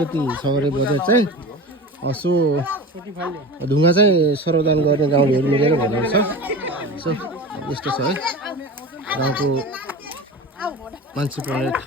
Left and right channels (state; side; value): normal; both; correlation 0.32